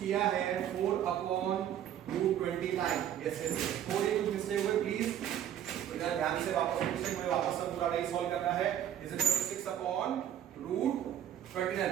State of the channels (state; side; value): quieter; left; 10.5 dB